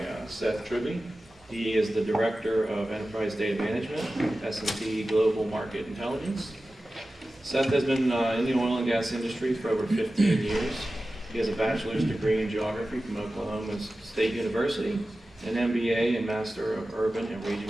Seth Tribbey. He is the Director of Enterprise Data Management, S&P Global Market Intelligence. Seth has been in the oil and gas industry for over 15 years. He has a bachelor's degree in geography from Oklahoma State University, an MBA and Master of Urban and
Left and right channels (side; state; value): both; normal; correlation 0.95